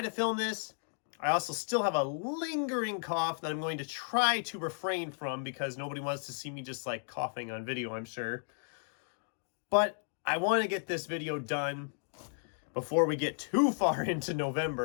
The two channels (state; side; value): silent; right; 55 dB below the other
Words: to film this. I also still have a lingering cough that I'm going to try to refrain from because nobody wants to see me just like coughing on video, I'm sure. But I want to get this video done before we get too far into